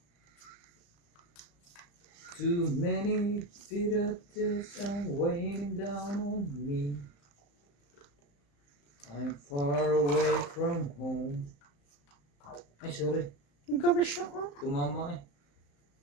Too many bitters are weighing down on me. I'm far away from home. Ay, sorry. Gabi siya. Tumama eh.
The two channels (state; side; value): late; right; 35 ms